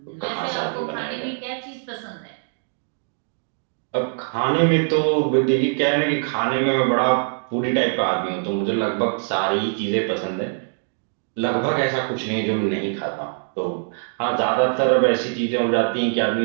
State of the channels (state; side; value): silent; left; digital silence